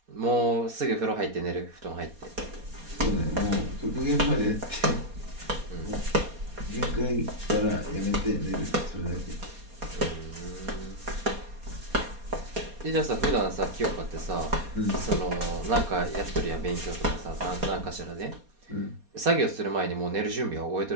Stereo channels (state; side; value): late; left; 4.2 ms